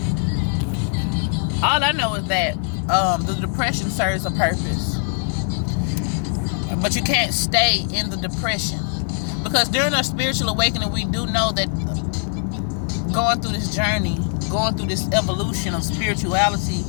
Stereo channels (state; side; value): silent; right; 60 dB below the other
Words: All I know is that the depression serves a purpose, but you can't stay in the depression, because during our spiritual awakening, we do know that going through this journey, going through this evolution of spirituality